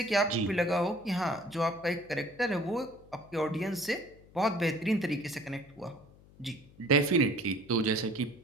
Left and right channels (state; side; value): noise; left; hum, 24 dB below the sound